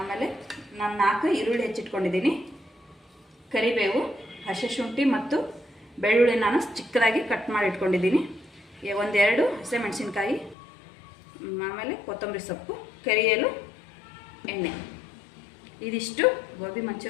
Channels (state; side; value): drops out; right; at 10.6 s